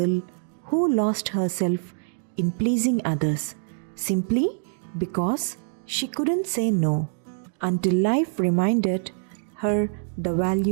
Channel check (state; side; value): silent; left; digital silence